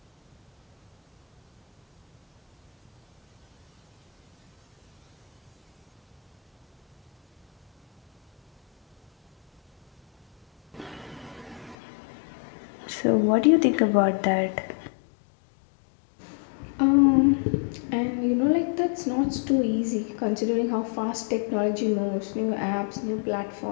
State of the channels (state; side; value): drops out; right; at 11.8 s